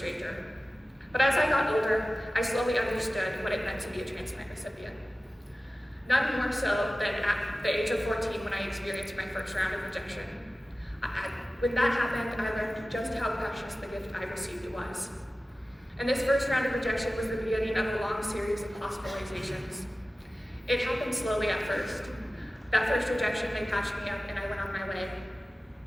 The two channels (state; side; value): normal; both; correlation 0.96